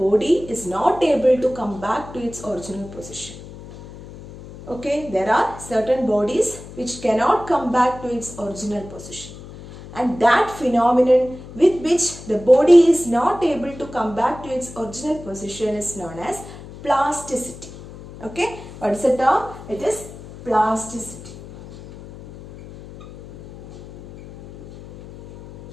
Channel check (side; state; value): left; noise; hum, 16 dB below the sound